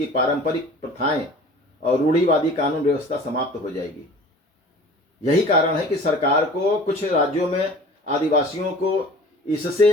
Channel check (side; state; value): both; normal; correlation 0.43